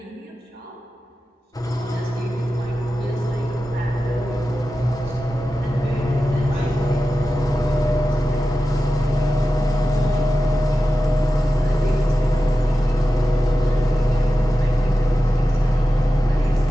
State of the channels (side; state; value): both; normal; correlation 0.93